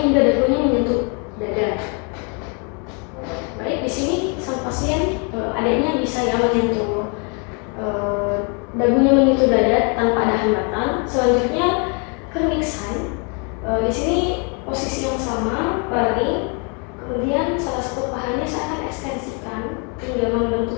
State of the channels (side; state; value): right; quieter; 36.1 dB